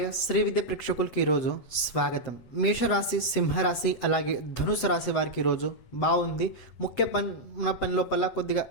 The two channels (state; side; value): late; right; 7.9 ms